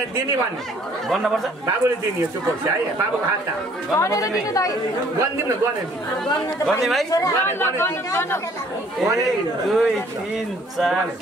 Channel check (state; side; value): normal; both; correlation 0.59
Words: दिने भन्ने गर्नुपर्छ बाबुले दिने हो चुप है बाबुको हात गरिदिउँ न गर्ने भाइ 1 2 3 4